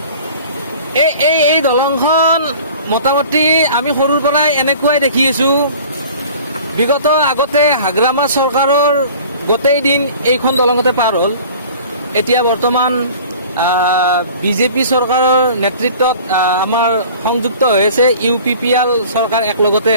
এই দলংখন মোটামুটি আমি সৰুৰ পৰাই এনেকুৱাই দেখি আছো। বিগত আগতে হাগ্ৰামা চৰকাৰৰ গোটেই দিন এইখন দলঙতে পাৰ হ'ল। এতিয়া বৰ্তমান বিজেপি চৰকাৰৰ নেতৃত্বত আমাৰ সংযুক্ত হৈ আছে, UPPL চৰকাৰ একলগতে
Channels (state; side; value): inverted; both; correlation -0.45